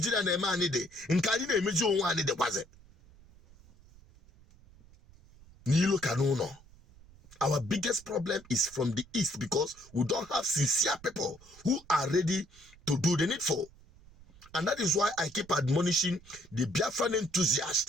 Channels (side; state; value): right; noise; rumble, 24 dB below the sound